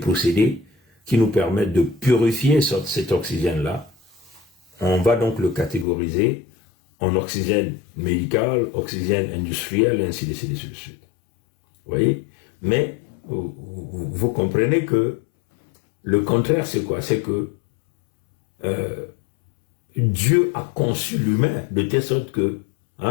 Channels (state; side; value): drops out; right; at 5.9 s